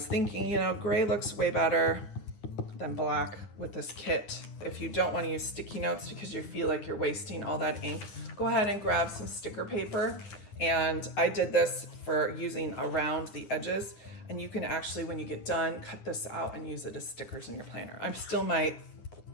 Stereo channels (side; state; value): right; late; 9.9 ms